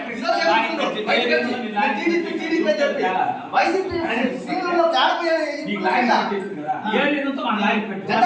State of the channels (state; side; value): identical; both; correlation 1.00